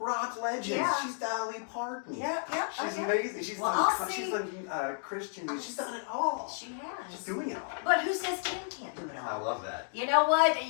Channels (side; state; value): right; silent; digital silence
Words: legends. Yeah. She's Dolly Parton. Yeah. She's amazing. She's done Christian music. She's done it all. She has. She's doing it all. But who says Ken can't do it all? I love that. You know what?